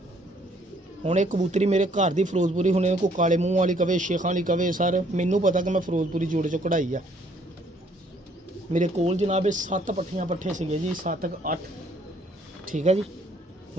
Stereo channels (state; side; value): normal; both; correlation 0.64